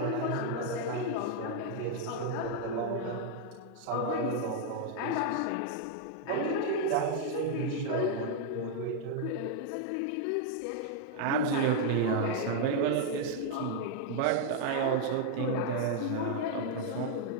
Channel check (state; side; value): different; both; correlation 0.00